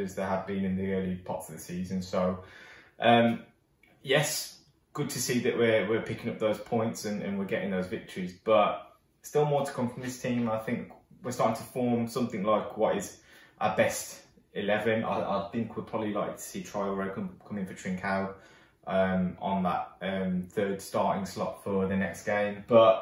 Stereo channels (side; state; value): both; identical; correlation 1.00